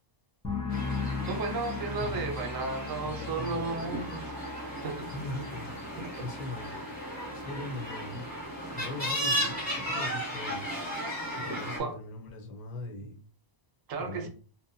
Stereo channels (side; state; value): left; late; 1.0 ms